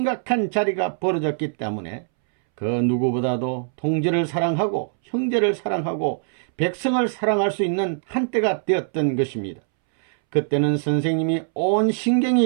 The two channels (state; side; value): silent; left; 64 dB below the other